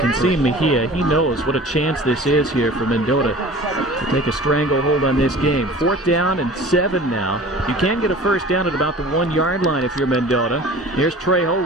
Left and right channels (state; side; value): normal; both; correlation 0.42